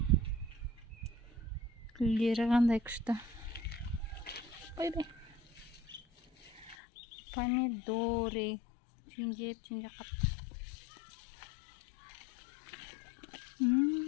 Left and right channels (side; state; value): right; drops out; at 6.8 s